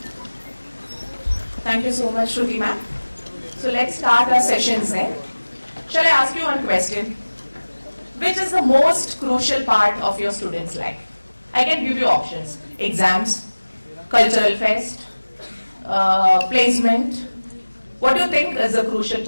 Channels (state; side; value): inverted; both; correlation -1.00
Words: Thank you so much, Shruti ma'am. So let's start our sessions then. Shall I ask you one question? Which is the most crucial part of your student's life? I can give you options. Exams, cultural fest, placement. What do you think is the crucial